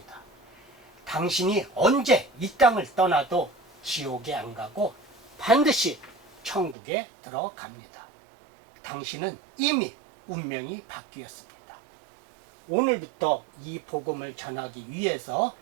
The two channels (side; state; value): left; drops out; at 6.8 s